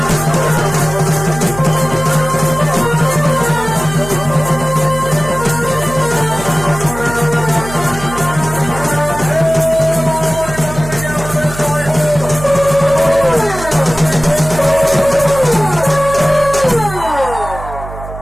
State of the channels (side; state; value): right; noise; hum, 12 dB below the sound